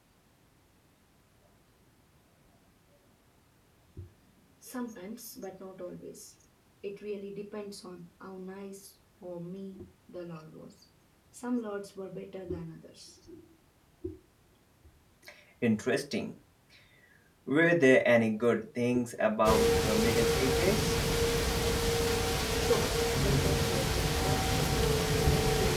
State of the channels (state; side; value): identical; both; correlation 1.00